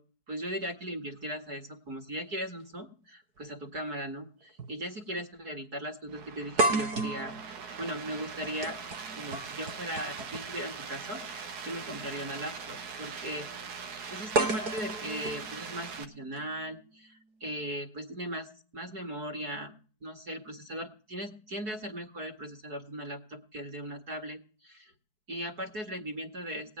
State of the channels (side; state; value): left; late; 4.7 ms